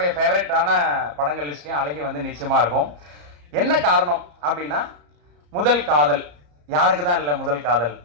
ஃபேவரட்டான படங்கள் லிஸ்ட்லேயும் அழகி வந்து நிச்சயமாக இருக்கும். என்ன காரணம் அப்படின்னா, முதல் காதல் யாருக்கு தான் இல்லை முதல் காதல்.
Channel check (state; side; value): late; left; 34 ms